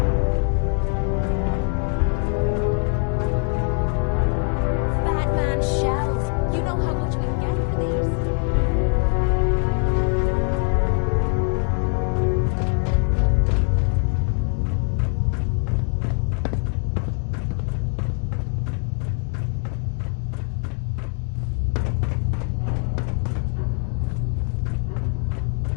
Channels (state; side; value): quieter; right; 37.1 dB